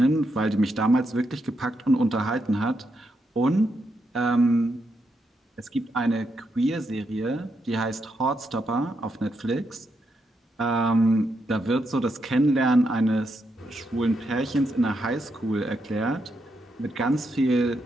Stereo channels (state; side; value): normal; both; correlation 0.81